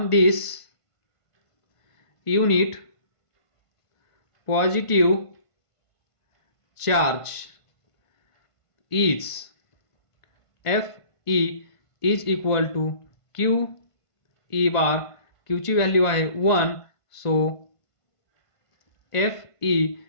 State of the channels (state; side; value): late; right; 1.5 ms